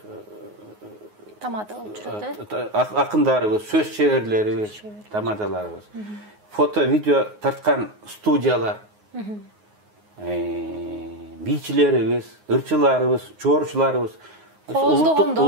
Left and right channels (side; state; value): left; late; 9.5 ms